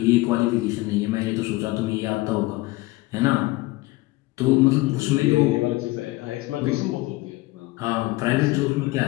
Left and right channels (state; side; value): quieter; right; 20.5 dB